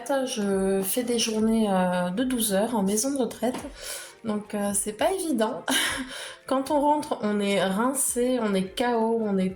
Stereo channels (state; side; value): identical; both; correlation 1.00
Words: je fais des journées de 12 heures en maison de retraite, donc c'est pas évident. Quand on rentre, on est rincé, on est KO, on